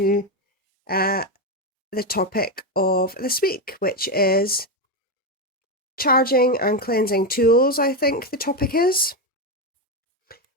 the topic of this week, which is charging and cleansing tools, I think the topic is.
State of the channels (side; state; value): both; normal; correlation 0.09